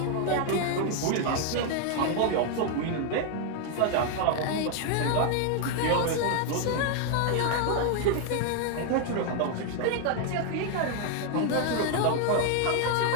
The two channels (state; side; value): different; both; correlation 0.01